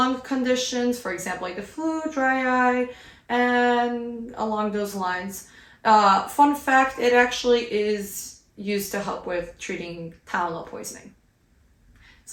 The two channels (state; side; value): identical; both; correlation 1.00